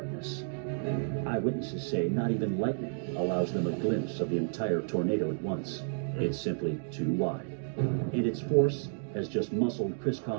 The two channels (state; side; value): silent; left; digital silence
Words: Eyewitnesses say not even lightning allows them a glimpse of the entire tornado at once. It's simply too wide. And its force has just muscled Chris